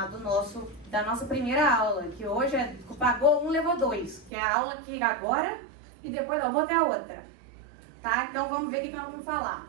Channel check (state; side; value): drops out; left; at 4.3 s